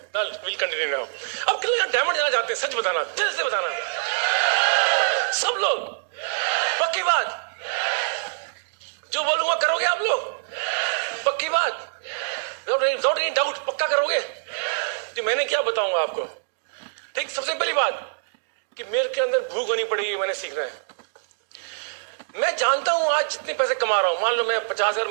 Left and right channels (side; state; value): left; silent; digital silence